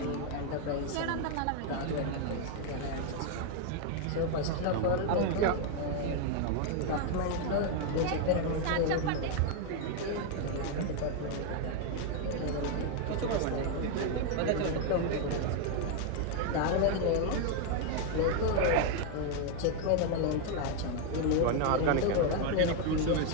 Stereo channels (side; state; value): both; different; correlation 0.01